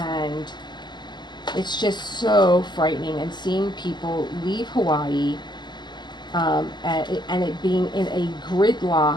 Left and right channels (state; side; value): late; right; 0.21 ms